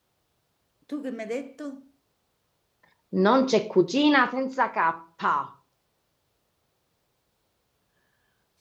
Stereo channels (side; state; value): both; identical; correlation 1.00